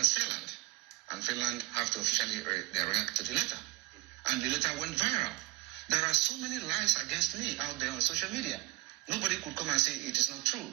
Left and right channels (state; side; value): quieter; left; 19.7 dB